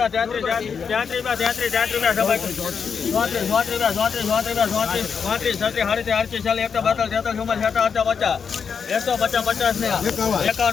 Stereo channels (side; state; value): right; quieter; 6.4 dB